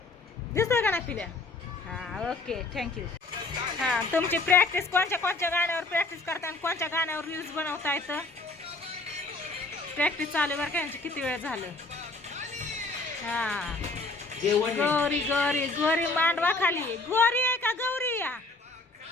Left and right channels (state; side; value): quieter; right; 3.3 dB